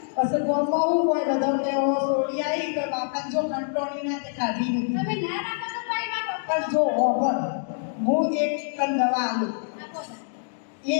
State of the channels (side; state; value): right; silent; digital silence